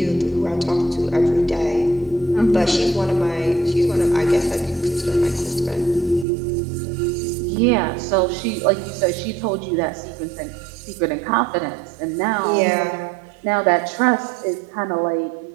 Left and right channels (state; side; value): drops out; left; at 6.2 s